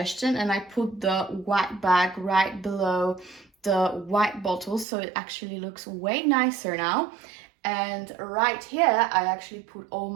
and I put the white bag right below the white bottles, so it actually looks way nicer now. And right here, I actually put all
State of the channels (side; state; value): left; drops out; at 4.9 s